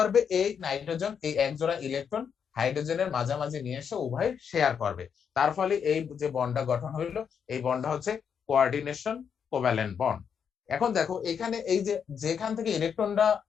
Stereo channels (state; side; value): quieter; right; 7.2 dB